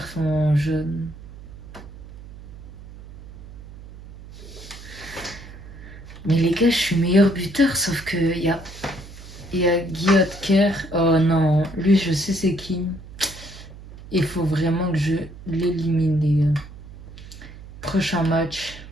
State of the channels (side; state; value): right; noise; hum, 16 dB below the sound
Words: jeune. Mais les gars, je suis meilleur buteur, sauf que il y a Guy Kerr. Oh non, lui je sais c'est qui. Il faut vraiment que je l'élimine, les gars. Prochain match.